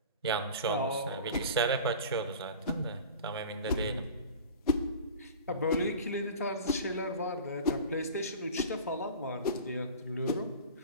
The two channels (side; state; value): both; inverted; correlation -0.36